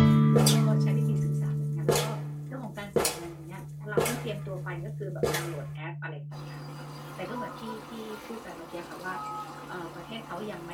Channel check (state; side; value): identical; both; correlation 1.00